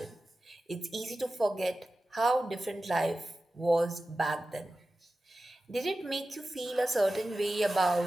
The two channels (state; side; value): normal; both; correlation 0.94